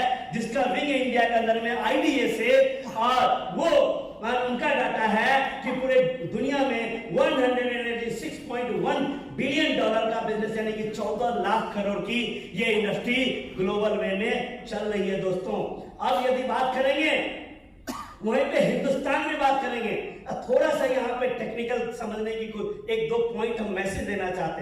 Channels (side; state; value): both; identical; correlation 1.00